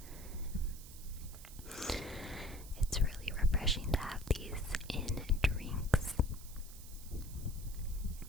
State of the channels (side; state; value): right; noise; hiss, 16 dB below the sound